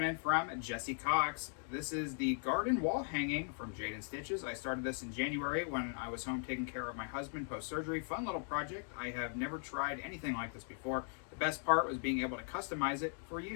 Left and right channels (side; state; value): right; silent; 52 dB below the other